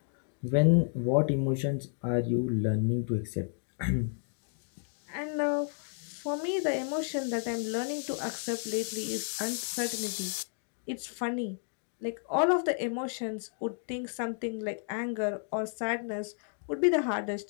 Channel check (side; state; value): right; silent; 57 dB below the other